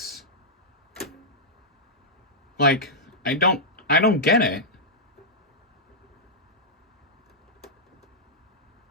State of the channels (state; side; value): normal; both; correlation -0.09